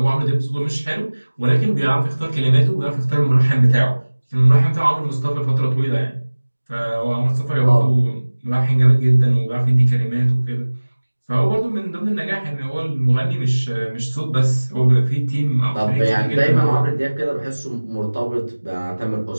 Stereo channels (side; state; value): both; inverted; correlation -1.00